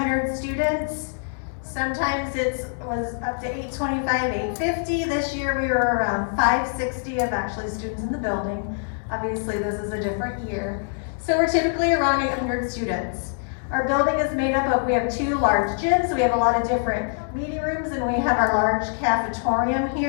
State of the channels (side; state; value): right; silent; 62 dB below the other